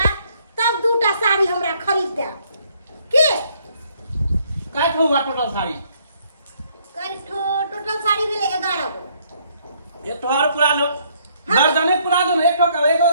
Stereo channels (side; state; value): both; inverted; correlation -0.67